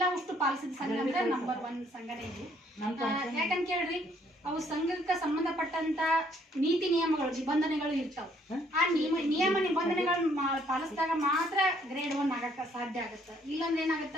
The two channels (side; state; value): both; normal; correlation 0.65